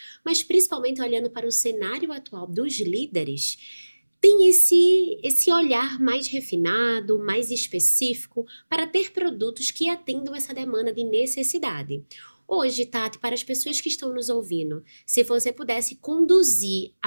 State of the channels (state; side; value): inverted; both; correlation -1.00